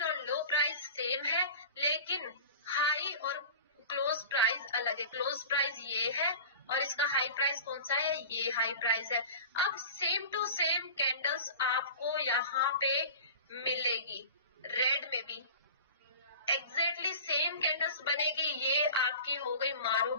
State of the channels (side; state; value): both; inverted; correlation -0.37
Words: और लो प्राइस सेम है, लेकिन हाई और क्लोज प्राइस अलग है। क्लोज प्राइस ये है और इसका हाई प्राइस कौन सा है, ये हाई प्राइस है। अब सेम टू सेम कैंडल्स आपको यहाँ पे मिलेगी, रेड में भी एग्जैक्टली सेम कैंडल्स बनेगी। ये आपकी हो गई